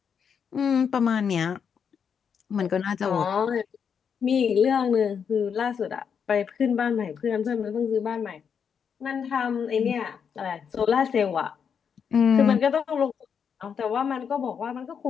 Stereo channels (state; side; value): quieter; right; 7.0 dB